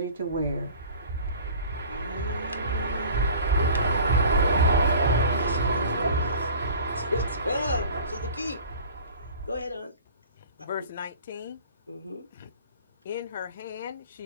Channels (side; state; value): both; inverted; correlation -0.44